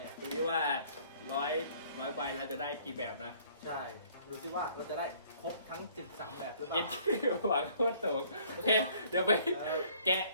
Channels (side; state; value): both; inverted; correlation -0.58